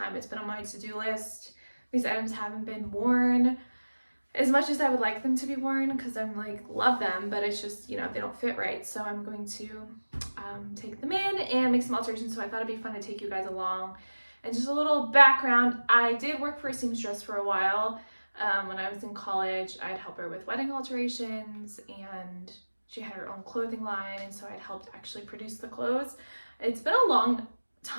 It's been on my to-do list. These items haven't been worn as much as I would like them to be worn because I'm love them, but it's just, they don't fit right. So I'm going to take them in and make some alterations. So I thought it'd be fun to take you guys along. And just a little background, I did work for a seamstress for a while. When I was in college, I'd help her with wedding alterations, and she had her own clothing line, and so I'd helped actually produce the clothes. It's been a long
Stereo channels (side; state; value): both; inverted; correlation -1.00